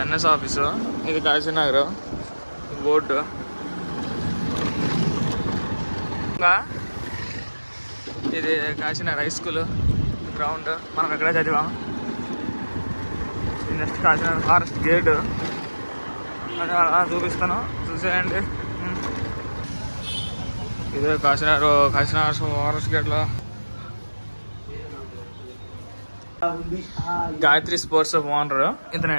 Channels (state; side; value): inverted; both; correlation -1.00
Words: ఎన్ఎస్ ఆఫీసు, ఇది కాశీనగర్ బోర్డు. ఇది కాశీనగర్ హై స్కూల్ గ్రౌండ్, మనం ఎక్కడే చదివాం. ఇది నెక్స్ట్ కాశీనగర్ ఫారెస్ట్ గేట్ అలా చూపిస్తాను, చూసేయండి. ఇదే కాశీనగర్ ఫారెస్ట్ గేట్లో గాయత్రి స్పోర్ట్స్ ఓనర్